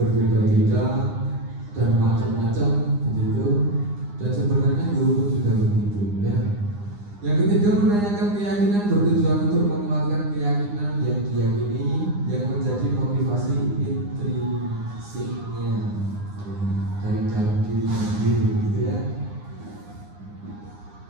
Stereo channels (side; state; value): left; late; 9.8 ms